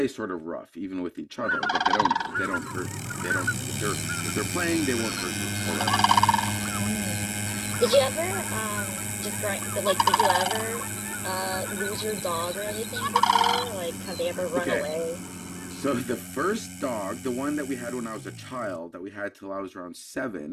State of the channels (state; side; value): identical; both; correlation 1.00